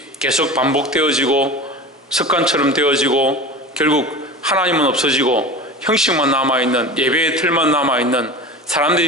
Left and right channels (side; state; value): both; normal; correlation 0.32